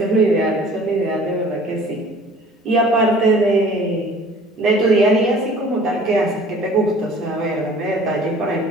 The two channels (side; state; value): both; normal; correlation 0.49